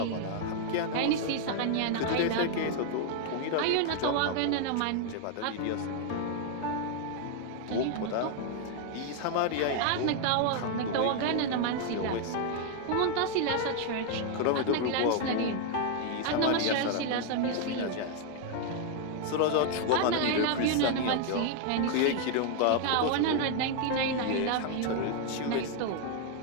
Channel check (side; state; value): both; different; correlation 0.00